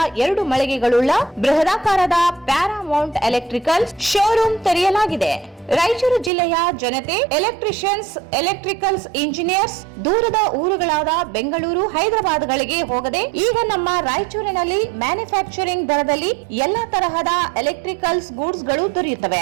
2 ಮಳಿಗೆಗಳುಳ್ಳ ಬೃಹದಾಕಾರದ ಪ್ಯಾರಾಮೌಂಟ್ ಎಲೆಕ್ಟ್ರಿಕಲ್ಸ್ ಶೋರೂಮ್ ತೆರೆಯಲಾಗಿದೆ. ರಾಯಚೂರು ಜಿಲ್ಲೆಯ ಜನತೆ, ಎಲೆಕ್ಟ್ರಿಷಿಯನ್ಸ್, ಎಲೆಕ್ಟ್ರಿಕಲ್ಸ್ ಇಂಜಿನಿಯರ್ಸ್ ದೂರದ ಊರುಗಳಾದ ಬೆಂಗಳೂರು, ಹೈದರಾಬಾದ್ಗಳಿಗೆ ಹೋಗದೆ ಈಗ ನಮ್ಮ ರಾಯಚೂರಿನಲ್ಲಿ ಮ್ಯಾನುಫ್ಯಾಕ್ಚರಿಂಗ್ ದರದಲ್ಲಿ ಎಲ್ಲಾ ತರಹದ ಎಲೆಕ್ಟ್ರಿಕಲ್ಸ್ ಗೂಡ್ಸ್ ಗಳು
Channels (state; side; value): drops out; left; at 6.3 s